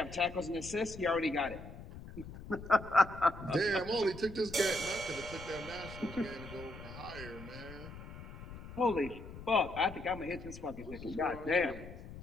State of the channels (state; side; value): noise; left; rumble, 13 dB below the sound